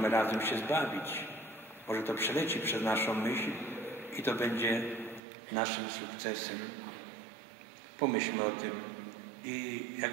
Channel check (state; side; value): drops out; left; at 5.2 s